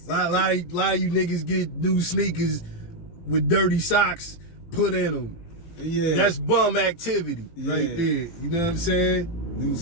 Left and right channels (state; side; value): late; right; 18 ms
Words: A lot of you niggas get new sneakers with dirty socks put in them. Yeah. That's bum activity right there. You know what I'm saying?